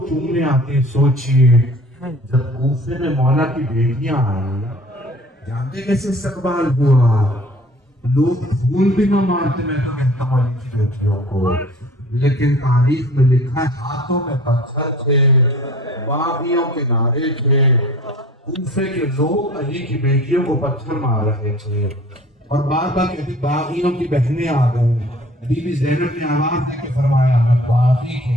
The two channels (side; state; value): both; normal; correlation 0.47